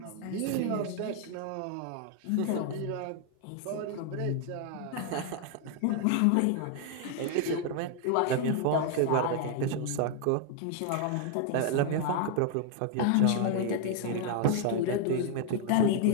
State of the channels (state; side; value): different; both; correlation 0.00